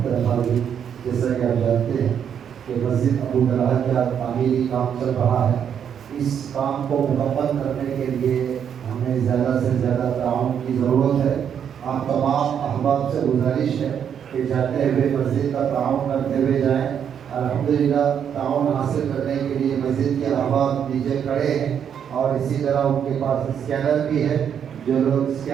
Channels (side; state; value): left; quieter; 8.3 dB